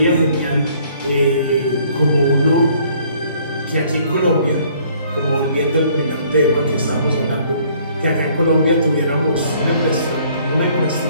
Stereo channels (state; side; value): inverted; both; correlation -0.60